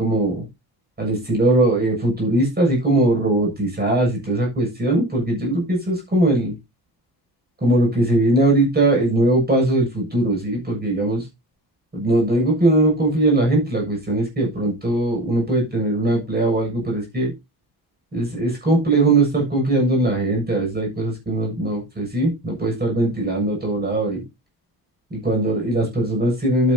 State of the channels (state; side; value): normal; both; correlation 0.33